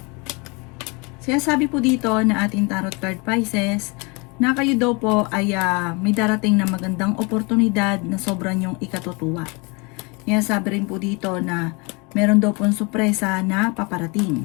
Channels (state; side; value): quieter; right; 29.3 dB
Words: Sinasabi po dito na ating tarot card Pisces na kayo daw po ay may darating na magandang oportunidad na sobrang yung ikatutuwa. Sinasabi rin po dito na meron daw pong sorpresa na